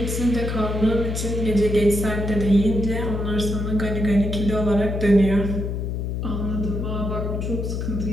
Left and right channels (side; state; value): left; noise; hum, 2 dB below the sound